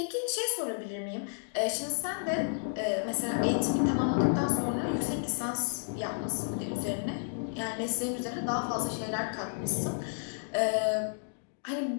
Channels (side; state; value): right; silent; digital silence